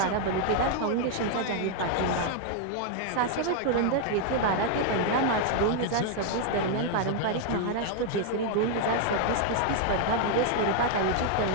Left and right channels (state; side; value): different; both; correlation 0.00